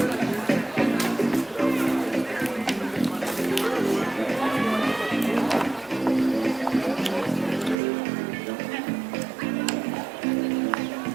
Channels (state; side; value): drops out; left; at 7.8 s